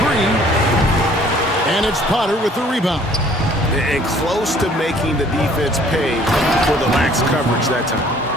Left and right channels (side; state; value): both; normal; correlation 0.56